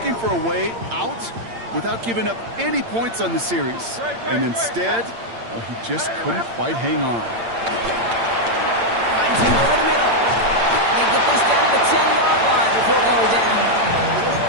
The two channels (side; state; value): left; late; 8.7 ms